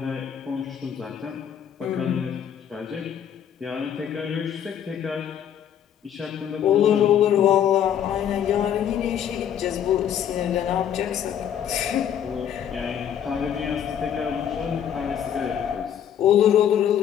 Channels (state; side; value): quieter; right; 9.3 dB